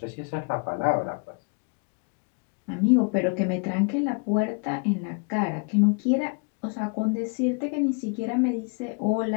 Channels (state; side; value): quieter; right; 35.6 dB